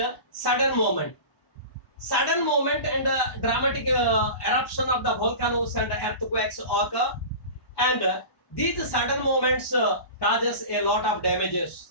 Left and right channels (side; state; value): right; late; 1.1 ms